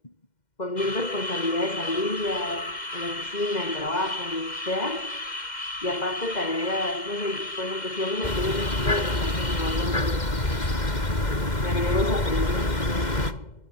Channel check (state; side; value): late; right; 2.1 ms